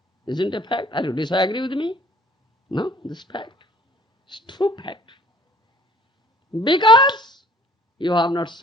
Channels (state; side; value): normal; both; correlation 0.55